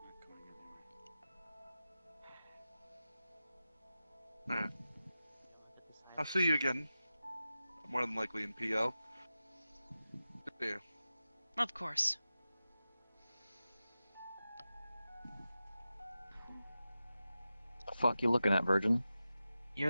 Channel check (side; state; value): both; inverted; correlation -0.93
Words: Alright. I'll see you again. More than likely in PL. See you. Of course. The fuck you looking at, Virgin? You're